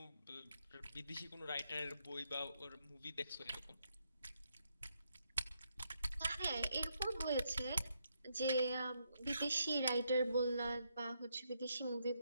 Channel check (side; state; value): both; inverted; correlation -0.78